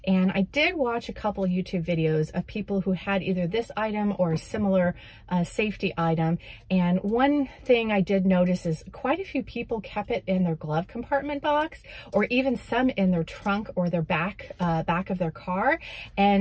And I did watch a couple YouTube videos of people who had either this item or a similar safety item. And one thing I did notice is quite a few people kept it in their glove compartment box, or even some in their trunk or their back of their car.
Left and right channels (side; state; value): both; identical; correlation 1.00